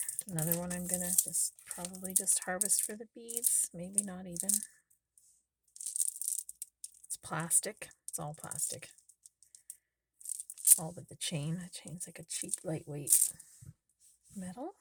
Another one I'm gonna probably just harvest for the beads. Maybe not even. It's plastic. It's all plastic. All but the chain. The chain's like a cheap, lightweight metal.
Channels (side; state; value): both; identical; correlation 1.00